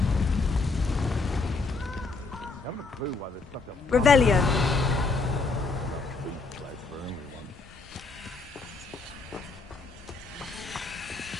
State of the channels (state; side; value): quieter; right; 3.9 dB